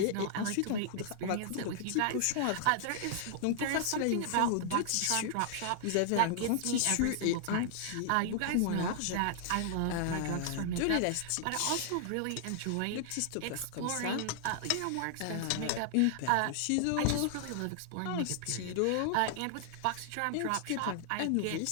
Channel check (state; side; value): different; both; correlation -0.01